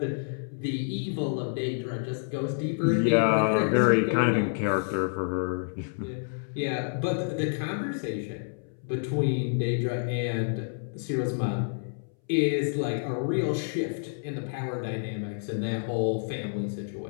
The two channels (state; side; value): silent; right; 59 dB below the other